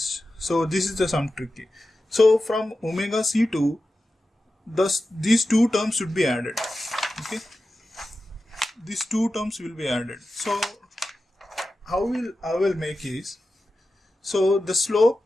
So this is some tricky. So from omega C2, these two terms should be added. Okay. These two terms will be added. So how I will make is, so the slope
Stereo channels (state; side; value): normal; both; correlation 0.93